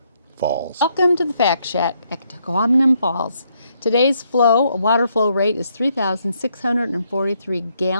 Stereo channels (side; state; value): both; inverted; correlation -0.74